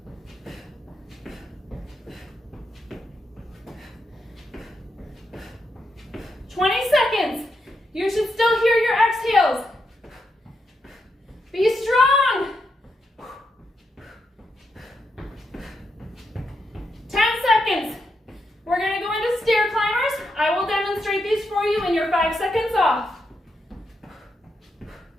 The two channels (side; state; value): both; normal; correlation 0.83